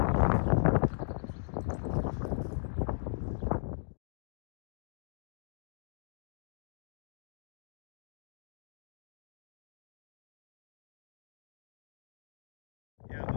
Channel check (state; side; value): silent; right; digital silence